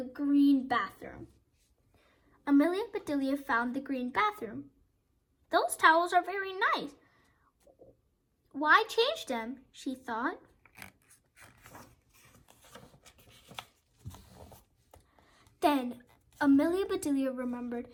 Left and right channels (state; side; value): identical; both; correlation 1.00